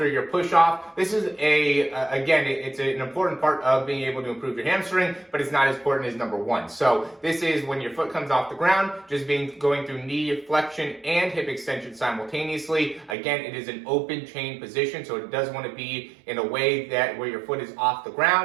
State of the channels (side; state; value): left; drops out; at 13.2 s